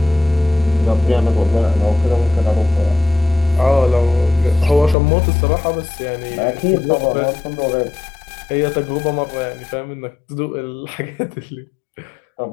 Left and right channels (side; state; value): right; drops out; at 5.0 s